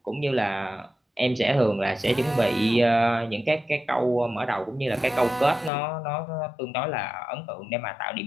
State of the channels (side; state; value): right; drops out; at 5.7 s